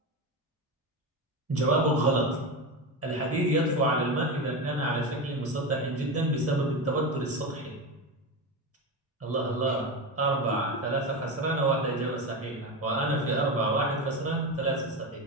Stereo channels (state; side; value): normal; both; correlation 0.19